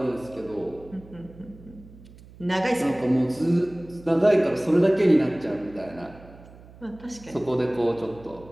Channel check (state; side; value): noise; right; hum, 21 dB below the sound